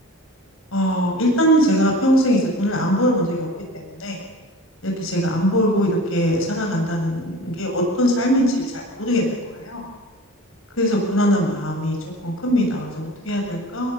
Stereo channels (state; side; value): normal; both; correlation 0.40